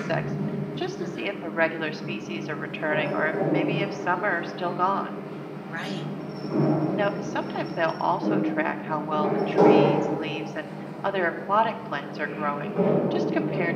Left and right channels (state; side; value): identical; both; correlation 1.00